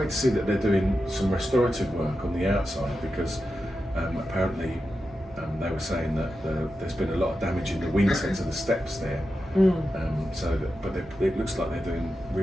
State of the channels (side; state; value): both; normal; correlation 0.90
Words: to see that they're doing some restorative work on the outside, because apparently they were saying that there's been a lot of damage in the winter to the steps there. It looks like they're doing